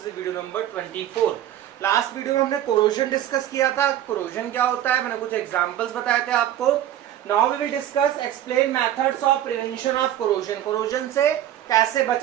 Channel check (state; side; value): quieter; left; 11.9 dB